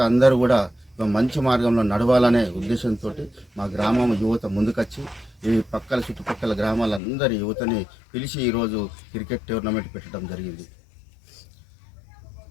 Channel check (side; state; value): right; drops out; at 7.0 s